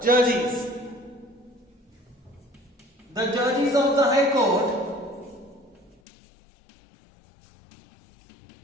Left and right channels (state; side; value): drops out; right; at 6.0 s